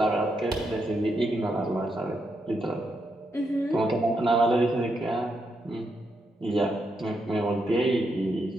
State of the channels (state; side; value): normal; both; correlation 0.81